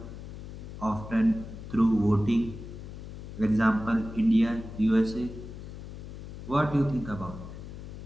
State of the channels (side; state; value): left; noise; hum, 11 dB below the sound